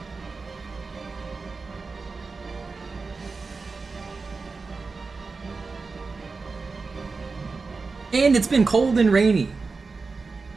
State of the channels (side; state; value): left; quieter; 4.3 dB